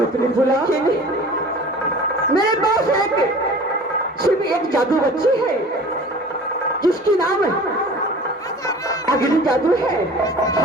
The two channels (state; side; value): normal; both; correlation 0.43